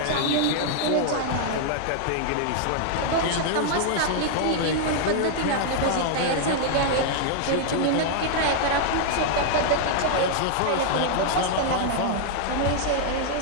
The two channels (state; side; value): different; both; correlation 0.00